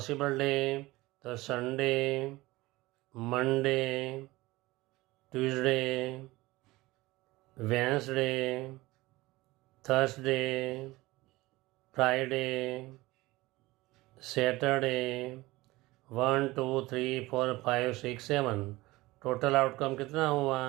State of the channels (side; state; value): left; quieter; 19.9 dB